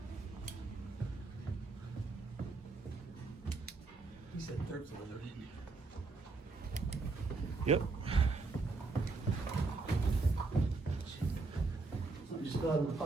He said 3rd floor though, didn't he? Yep. Something just fell out of my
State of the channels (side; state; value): left; quieter; 3.8 dB